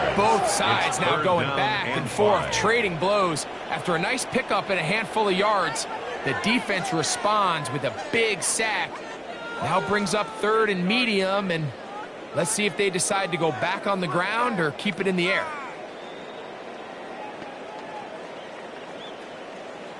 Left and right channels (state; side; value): identical; both; correlation 1.00